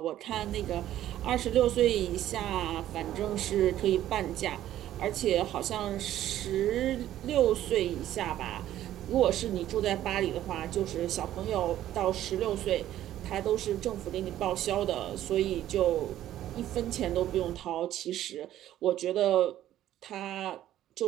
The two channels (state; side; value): quieter; left; 12.7 dB